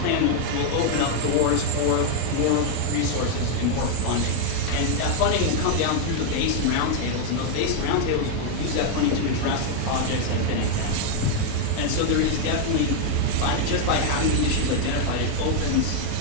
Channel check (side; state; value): both; different; correlation 0.00